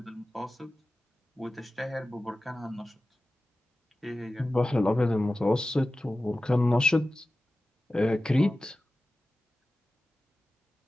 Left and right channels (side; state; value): both; normal; correlation 0.95